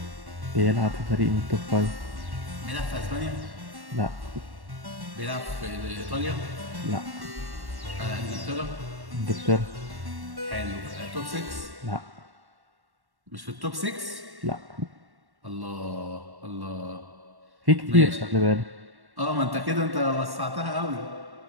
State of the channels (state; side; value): late; left; 1.1 ms